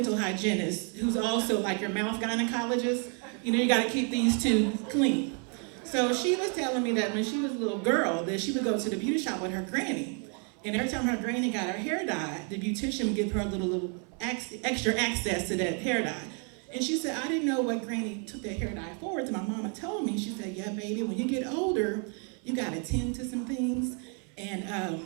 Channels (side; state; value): left; quieter; 39.3 dB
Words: hygienist, who's also like your mouth gynecologist. You gotta keep these two clean. So she was telling me that when she was a little girl, that she would go to the beauty shop with her granny. And every time her granny got her hair dyed, the beautician would give her a little extra access to that hair dye. And she said, I didn't know what granny took that hair dye for. So my mama told me, she said, yeah, baby, when you get older, you gotta tend to some things.